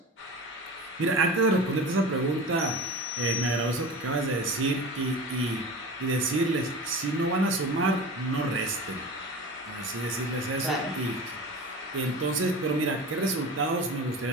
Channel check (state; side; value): normal; both; correlation 0.32